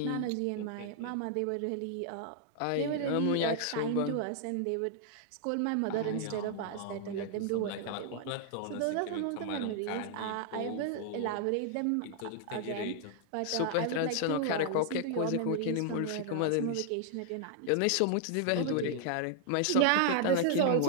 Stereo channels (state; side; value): different; both; correlation 0.00